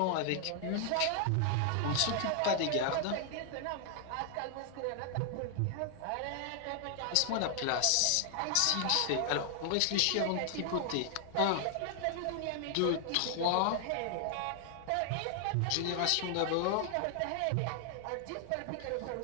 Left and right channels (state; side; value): different; both; correlation 0.00